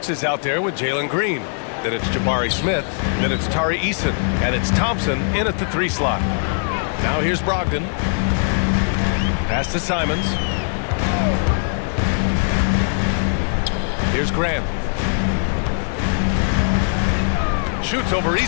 is out there with Jalen Green. Then it's Jabari Smith. Then it's Tari Eason. And it's Thompson in at the 3 slot. Now here's Brogdon. Pass to Simons. Here's Grant. Shoots over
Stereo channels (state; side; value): silent; right; digital silence